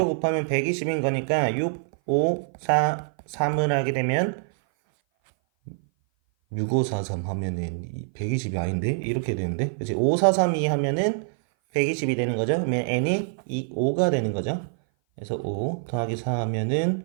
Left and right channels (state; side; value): silent; left; 57 dB below the other